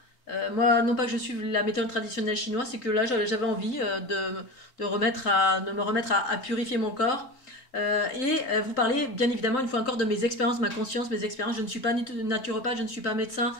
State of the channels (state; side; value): late; right; 3.8 ms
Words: Moi, non pas que je suive la méthode traditionnelle chinoise, c'est que là, j'avais envie de me remettre à purifier mon corps. Vous parler, bien évidemment, une fois encore, de mes expériences, ma conscience, mes expériences. Je ne suis pas naturopathe, je ne suis pas médecin.